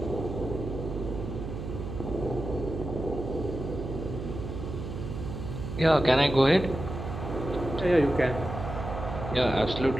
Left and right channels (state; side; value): noise; right; hum, 7 dB below the sound